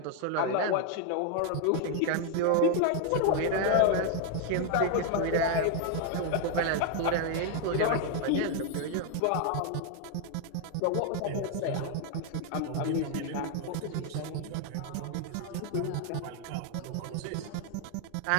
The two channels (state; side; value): different; both; correlation 0.00